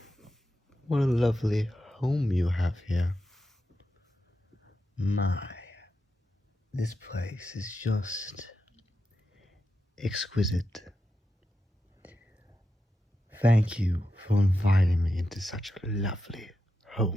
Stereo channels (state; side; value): normal; both; correlation 0.87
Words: What a lovely home you have here. My, this place is just exquisite. Thank you for inviting me into such a lovely